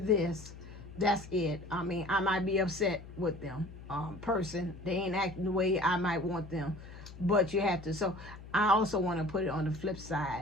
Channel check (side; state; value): left; noise; hum, 15 dB below the sound